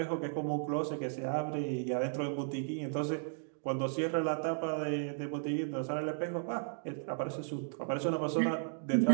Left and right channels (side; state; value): left; silent; digital silence